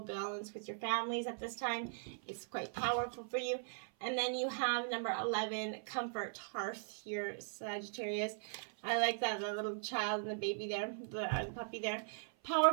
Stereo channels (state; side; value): silent; left; 51 dB below the other